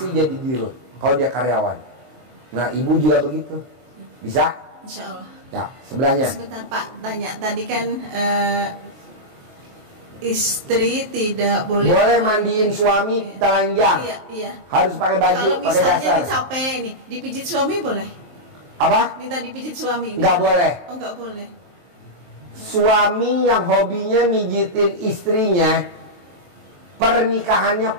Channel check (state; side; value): late; left; 23 ms